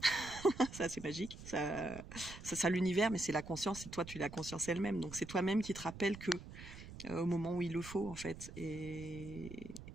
Ça, c'est magique. Ça l'univers, mais c'est la conscience, et toi, tu es la conscience elle-même. Donc, c'est toi-même qui te rappelle que au moment où il le faut, en fait. Et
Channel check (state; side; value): noise; right; rumble, 13 dB below the sound